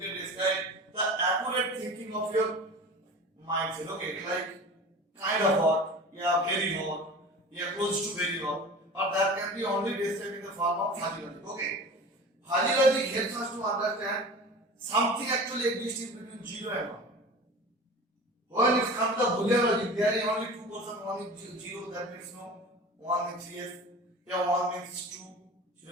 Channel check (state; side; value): normal; both; correlation 0.37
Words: describe the accurate thinking of your mindset. Okay, like kind of hot, yeah, very hot, yeah, close to very hot, but that can be only described in the form of fuzzy logic. Okay, fuzzy logic helps us to understand something actually exists in between 0 and 1. When it comes to the Boolean logic, there is only two percent. One is 0, that means no. 1 means yes. Yeah, 1 means true,